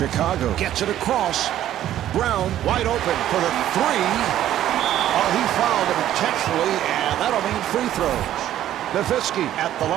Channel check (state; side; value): quieter; left; 12.2 dB